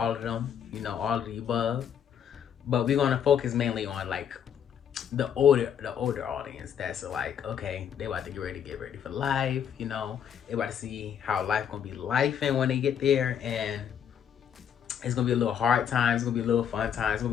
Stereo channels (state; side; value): quieter; right; 8.5 dB